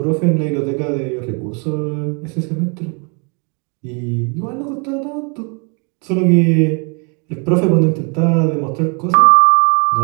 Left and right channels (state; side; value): quieter; left; 35.5 dB